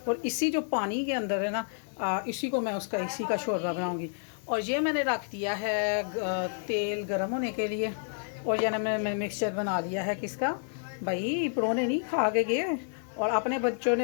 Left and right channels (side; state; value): right; silent; digital silence